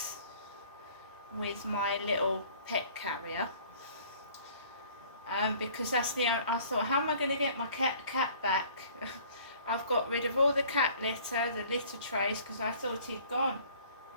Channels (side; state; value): both; inverted; correlation -0.53